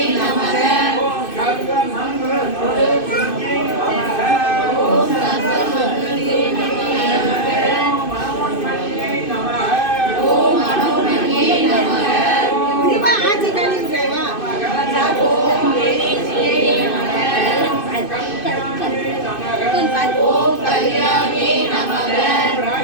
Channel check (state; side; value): late; right; 2.6 ms